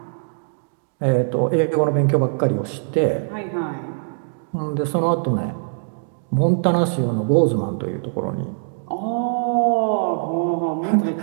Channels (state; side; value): silent; left; digital silence